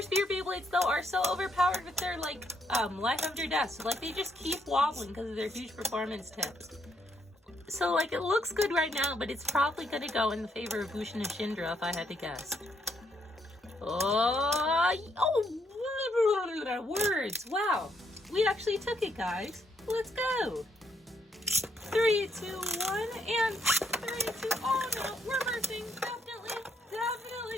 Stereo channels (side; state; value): both; normal; correlation 0.74